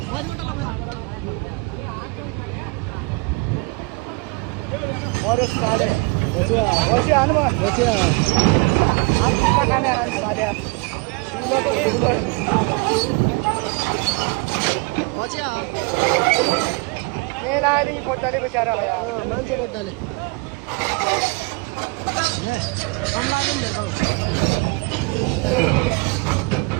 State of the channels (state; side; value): quieter; left; 28.8 dB